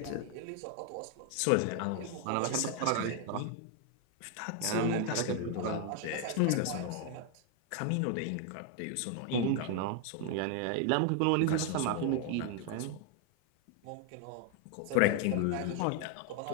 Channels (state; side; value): different; both; correlation 0.00